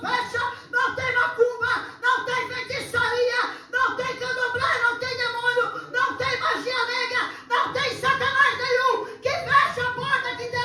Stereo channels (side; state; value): both; identical; correlation 1.00